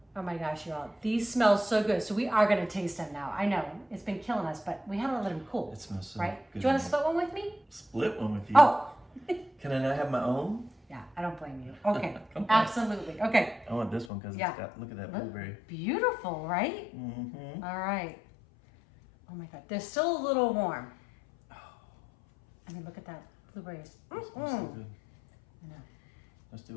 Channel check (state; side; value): drops out; right; at 14.1 s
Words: Oh my gosh, y'all, these smell so good. So we are gonna taste them now. I know, it's been killing us, but we had to let them cool. It smells so right? good. Do you wanna split one with me? Split one with you? Oh. Can I not have my own? Yeah, I don't blame you. Okay, absolutely. Okay. I want this one because it's got, look at that blueberry. Beautiful, right? Mm-hmm. All right. Oh my God, they're still a little warm. I mean, look at that, blueberries. It smells so good. I know. Let's do